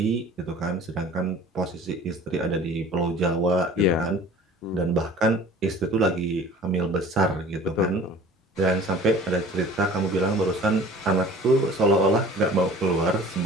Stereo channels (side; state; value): both; normal; correlation 0.46